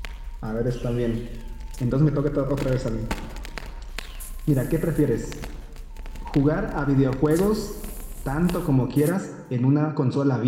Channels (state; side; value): identical; both; correlation 1.00